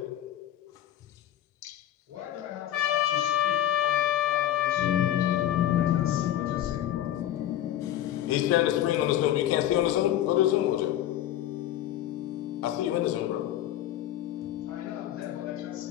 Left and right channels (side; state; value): right; quieter; 12.3 dB